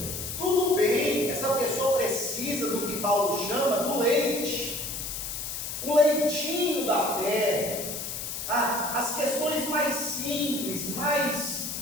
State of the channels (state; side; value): noise; left; hiss, 5 dB below the sound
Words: Tudo bem, essa pessoa precisa do que Paulo chama do leite, o leitinho da fé, as questões mais simples, mais